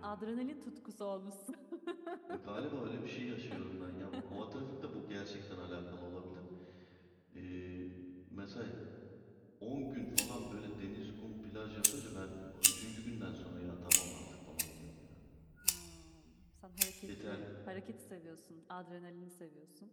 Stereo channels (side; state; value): both; identical; correlation 1.00